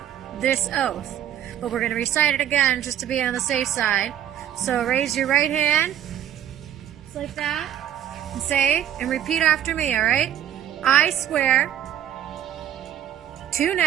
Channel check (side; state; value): left; quieter; 10.9 dB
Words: this oath. But we're going to recite it again just to be on the safe side. So raise your right hand, just like that, and say, and repeat after me, alright? I swear to